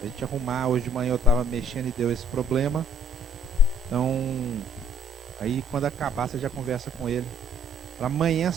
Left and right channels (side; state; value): both; normal; correlation 0.60